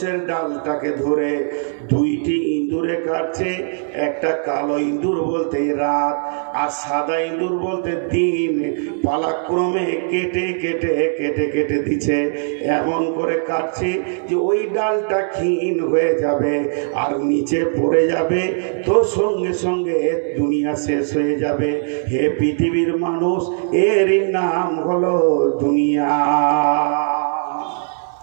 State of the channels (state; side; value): silent; left; digital silence